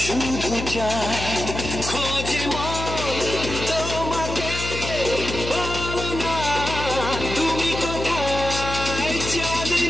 শুধু চায়। খোঁজে মন তোমাকে, বলো না তুমি কোথায়?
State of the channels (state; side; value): noise; left; hum, 6 dB below the sound